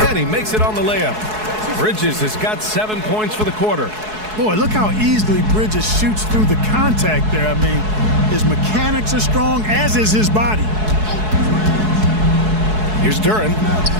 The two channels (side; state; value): left; late; 4.7 ms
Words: And he makes it on the layup. Bridges has got 7 points for the quarter. Boy, look how easily Bridges shoots through the contact there. I mean, his mechanics are strong, as is his body. Here's Duren.